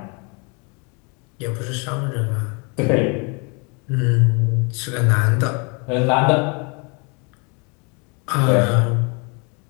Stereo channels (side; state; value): right; quieter; 33.0 dB